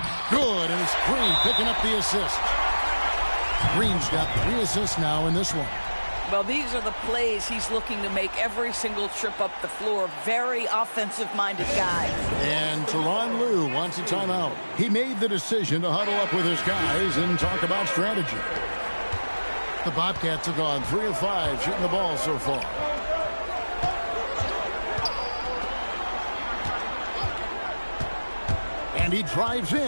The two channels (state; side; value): inverted; both; correlation -1.00